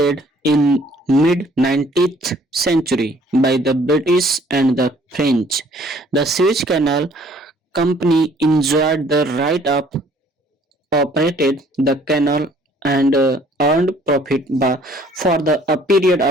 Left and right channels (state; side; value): normal; both; correlation 0.58